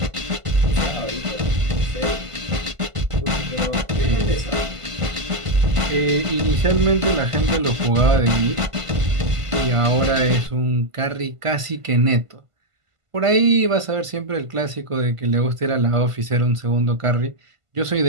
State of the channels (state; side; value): late; left; 1.5 ms